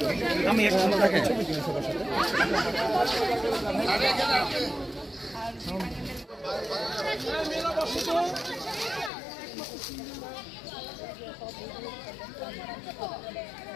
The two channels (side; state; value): right; drops out; at 9.1 s